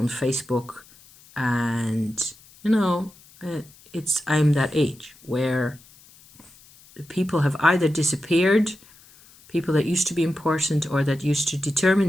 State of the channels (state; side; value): noise; left; hiss, 25 dB below the sound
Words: Facebook. And, you know, I'm that age where people have either disappeared, people that used to be important or that used to